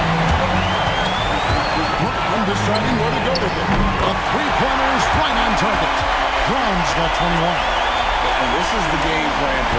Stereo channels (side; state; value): both; identical; correlation 1.00